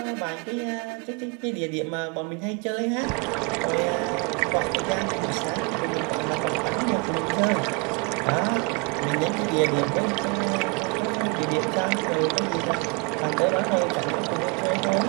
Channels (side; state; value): left; quieter; 32.3 dB